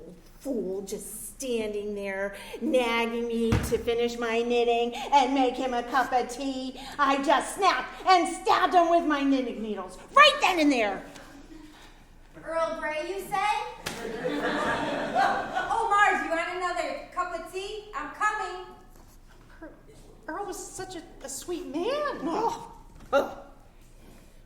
fool, just standing there nagging me to finish my knitting and make him a cup of tea. I just snapped and stabbed him with my knitting needles right then and there. Earl Grey, you say? Oh, Marge, you want another cup of tea? I'm coming. Earl was such a sweet man. Oh.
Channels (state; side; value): identical; both; correlation 1.00